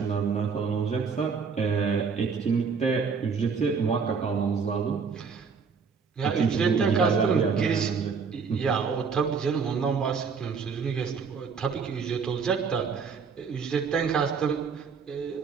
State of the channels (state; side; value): quieter; left; 5.7 dB